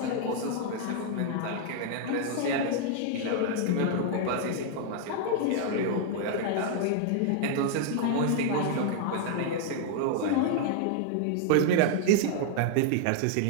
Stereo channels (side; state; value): both; different; correlation 0.00